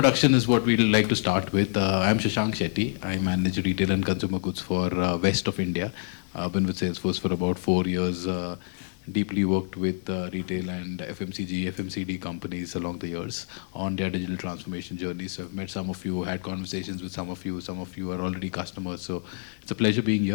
is what we'd like to start with. I'm Shashank Shetty. I manage retail and consumer goods for west of India. I've been with Salesforce for about 4 years. Deeply worked with retail and FMCG, FMCD companies along the years on their digital transformation journey. So I've met some of you, had conversations with some of you. Some of you are already customers. So it's a pleasure being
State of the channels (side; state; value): right; silent; digital silence